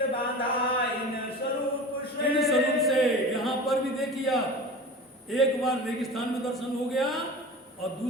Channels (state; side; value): normal; both; correlation 0.34